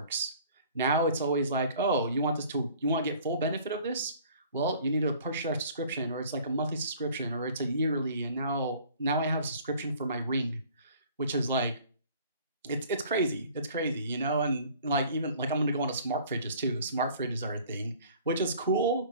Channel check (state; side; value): inverted; both; correlation -0.51